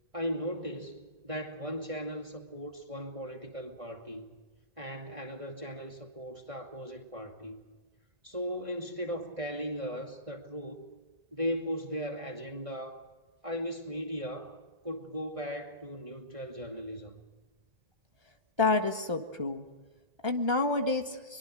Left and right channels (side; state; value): left; late; 1.3 ms